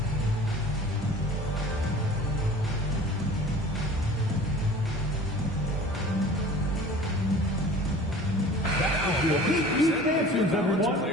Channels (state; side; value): normal; both; correlation 0.44